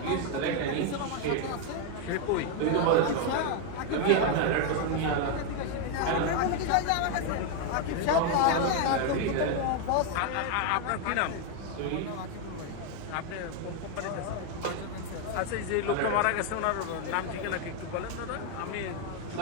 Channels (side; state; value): both; different; correlation 0.01